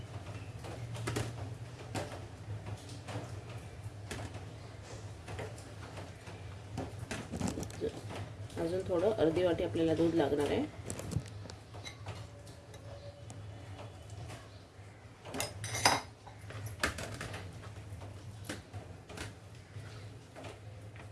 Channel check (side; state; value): both; identical; correlation 1.00